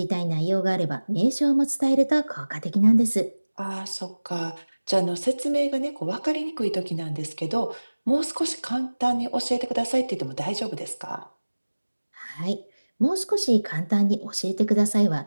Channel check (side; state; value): both; inverted; correlation -1.00